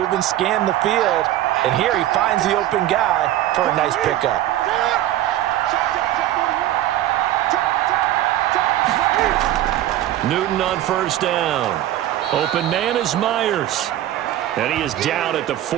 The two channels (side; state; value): left; quieter; 13.5 dB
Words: scan the field. And here he finds the open guy for a nice pickup. Newton on 1st down. Open man is Myers. And he is down at the